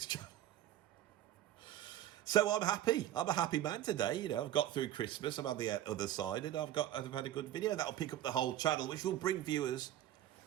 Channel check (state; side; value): quieter; left; 12.7 dB